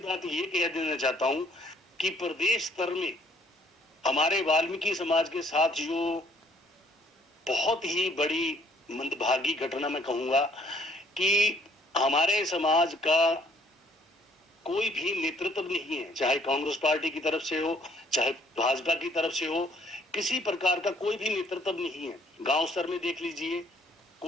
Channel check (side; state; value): both; normal; correlation 0.62